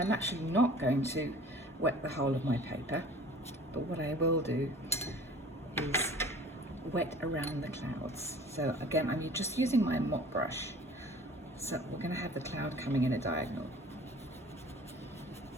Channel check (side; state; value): both; normal; correlation 0.46